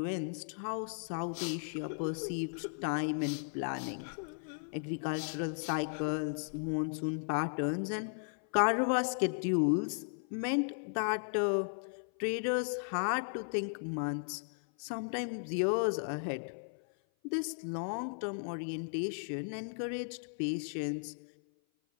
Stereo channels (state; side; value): silent; right; 54 dB below the other